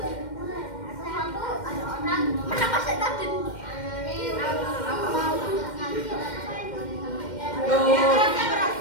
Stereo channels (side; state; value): right; late; 2.1 ms